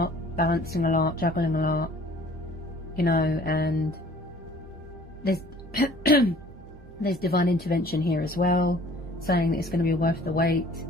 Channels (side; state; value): both; normal; correlation 0.52